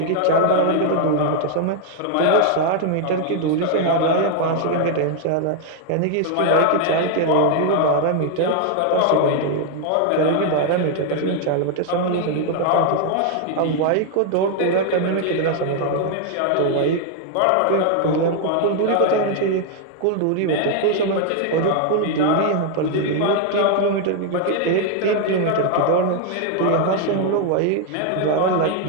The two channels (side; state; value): both; different; correlation 0.00